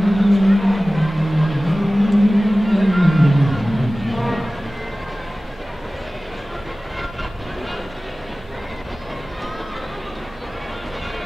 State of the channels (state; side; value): normal; both; correlation 0.97